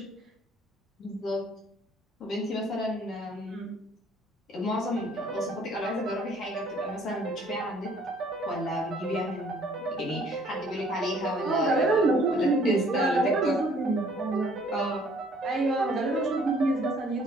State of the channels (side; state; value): both; normal; correlation 0.59